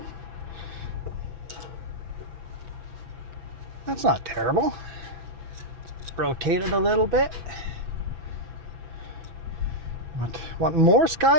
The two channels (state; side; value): late; left; 8.6 ms